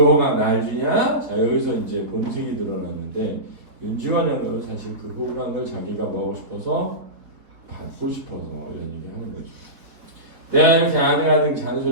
날 주냐? 자 여기서 이제 본색이 드러나는데 윤지원 영감은 사실 그 호강을 자기가 뭐하고 싶어서 받고 싶어서 이런 얘기 하는 거죠. 내가 이렇게 아등아등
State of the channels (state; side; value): late; left; 4.3 ms